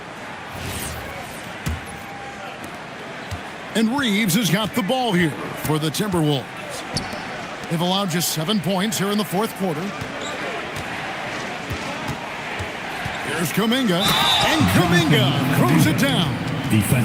And Reeves has got the ball here for the Timberwolves. They've allowed just 7 points here in the fourth quarter. Here's Kuminga, and Kuminga throws it down.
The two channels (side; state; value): both; identical; correlation 1.00